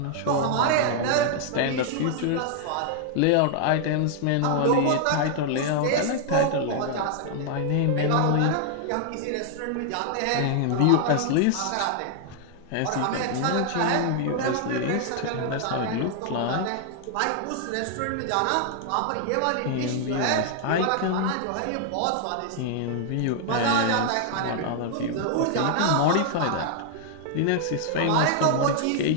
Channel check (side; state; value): both; different; correlation 0.00